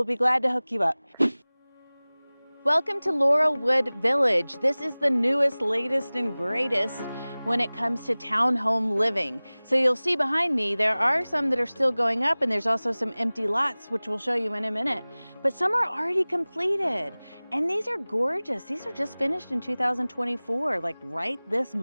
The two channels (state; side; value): inverted; both; correlation -0.99